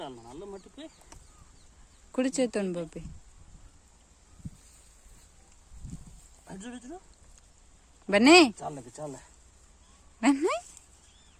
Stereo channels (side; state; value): both; identical; correlation 1.00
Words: కుడి చేతోని పప్పి బన్నీ బన్నీ